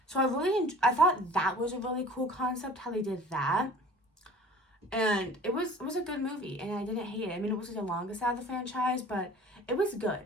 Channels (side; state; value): both; normal; correlation 0.46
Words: So I thought that was a really cool concept, how they did that. And it was a good movie, and I didn't hate it. I mean, it wasn't the longest out of the franchise, but it was